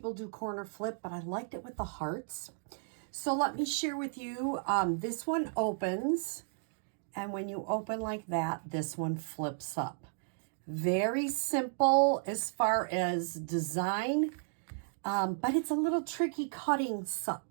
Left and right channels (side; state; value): left; silent; digital silence